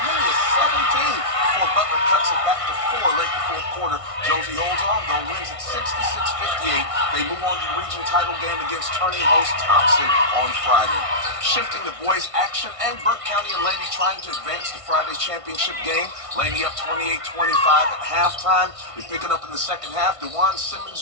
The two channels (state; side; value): late; left; 1.5 ms